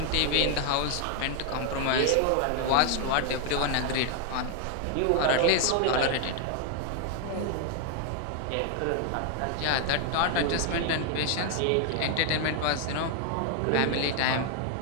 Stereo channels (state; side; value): different; both; correlation 0.00